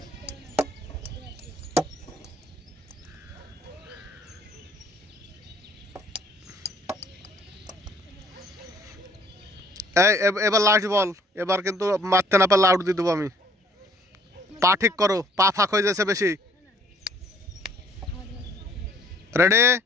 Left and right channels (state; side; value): normal; both; correlation 0.59